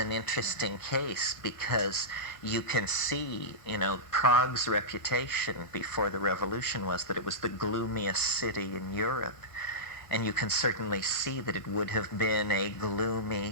interesting case because you can see, you know, Prague's reputation before the revolution was that it was the gloomiest city in Europe. And you can certainly see that it would have been a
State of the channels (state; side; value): late; right; 1.5 ms